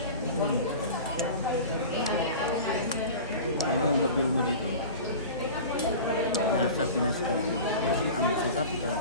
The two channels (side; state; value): both; inverted; correlation -0.35